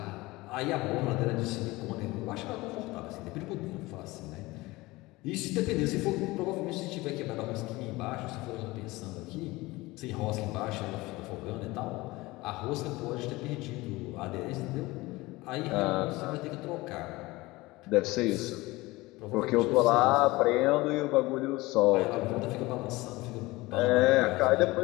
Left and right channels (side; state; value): right; quieter; 20.8 dB